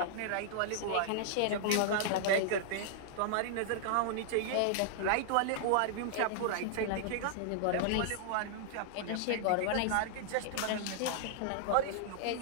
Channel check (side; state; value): both; different; correlation -0.01